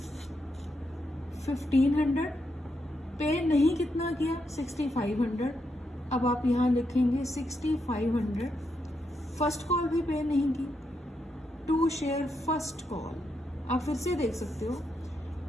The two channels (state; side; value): normal; both; correlation 0.82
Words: 1500, पे नहीं कितना किया 6500, अब आप यहाँ लिखेंगे 6500, फर्स्ट कॉल भी पे नहीं की, टू शेयर फर्स्ट कॉल, आप फिर से देख सकते हो,